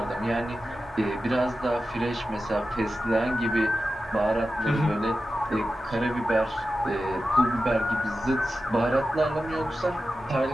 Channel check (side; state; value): both; normal; correlation 0.92